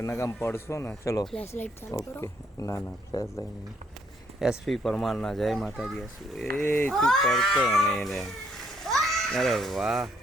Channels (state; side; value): normal; both; correlation 0.70